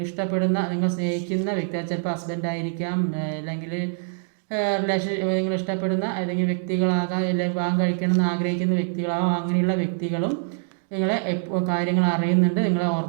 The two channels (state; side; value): silent; left; digital silence